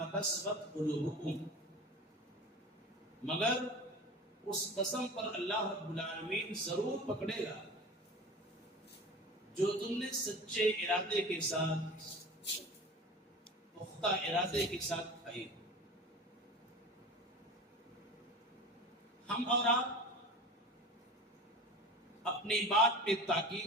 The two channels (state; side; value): normal; both; correlation 0.35